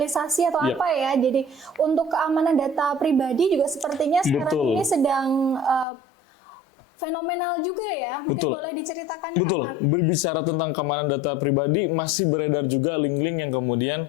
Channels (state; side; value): drops out; right; at 5.9 s